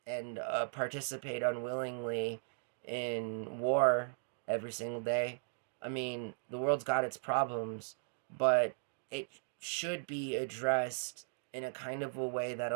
and participate unwillingly in war every single day. I mean, the world's got its problems, but it should be addressed in a kind of a way that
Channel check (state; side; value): silent; left; digital silence